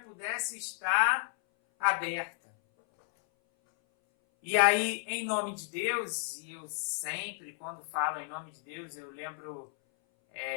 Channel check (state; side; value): silent; right; 56 dB below the other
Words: estar aberta. E aí, em nome de Deus, e eu sempre, quando falo em nome de Deus, eu lembro